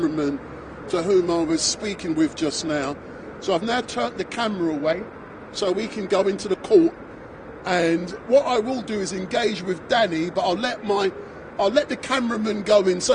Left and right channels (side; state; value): both; identical; correlation 1.00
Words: to whom I was speaking with just now. So I've now turned the camera away so we can go into the court. And what I will do is engage with Danny, but I'll let the cameraman go in.